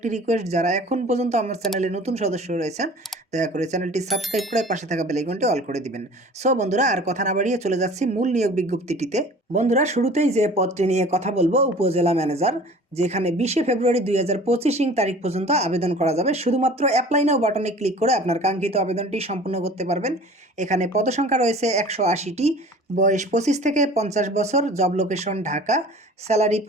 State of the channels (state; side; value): normal; both; correlation 0.44